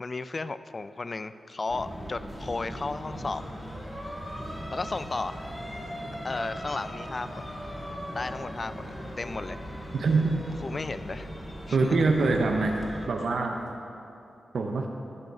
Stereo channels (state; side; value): normal; both; correlation 0.89